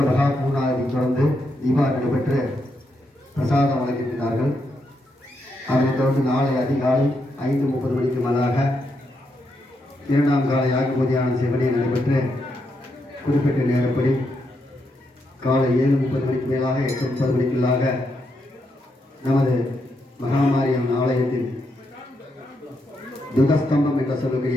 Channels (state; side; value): normal; both; correlation 0.81